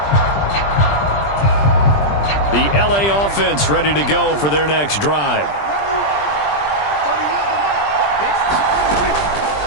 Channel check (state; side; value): late; right; 20 ms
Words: The LA offense ready to go for their next drive.